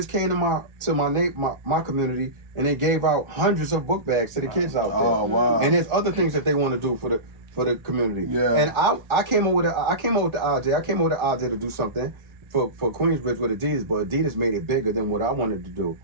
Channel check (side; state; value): left; late; 1.4 ms